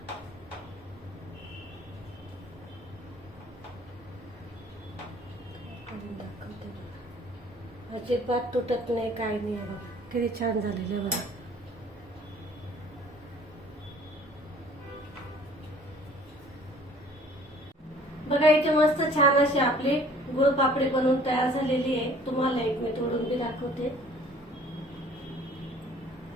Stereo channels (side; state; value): both; normal; correlation 0.53